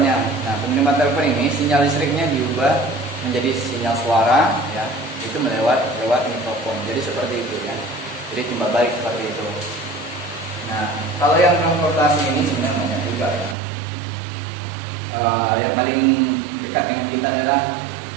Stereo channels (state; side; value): drops out; left; at 13.6 s